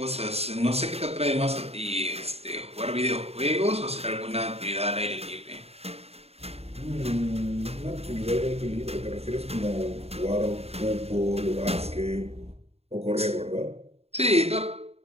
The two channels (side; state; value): left; late; 0.30 ms